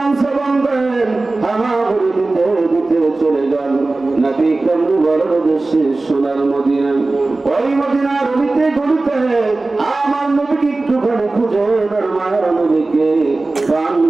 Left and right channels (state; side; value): quieter; left; 3.3 dB